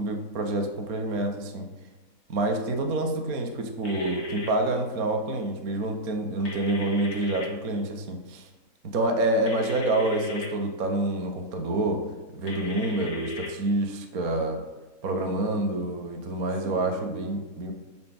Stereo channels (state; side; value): late; left; 4.2 ms